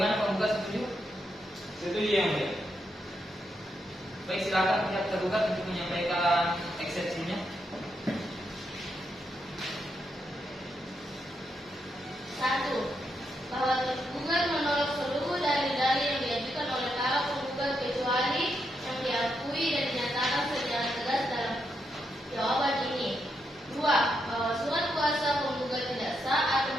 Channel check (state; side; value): normal; both; correlation 0.81